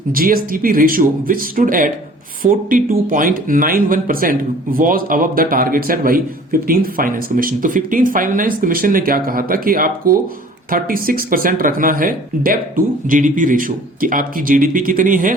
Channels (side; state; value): both; normal; correlation 0.49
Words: GSDP ratio which stood at 42.91% was above the target set by 15th finance commission. तो 15th फाइनेंस कमीशन ने क्या कहा था कि आपको 36% रखना है डेब्ट टू जीडीपी रेशियो, कि आपकी जीडीपी कितनी है